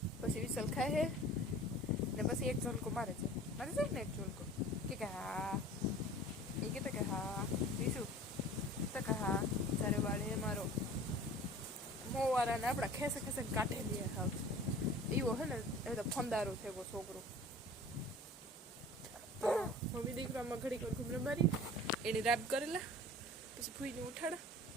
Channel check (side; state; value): both; normal; correlation 0.43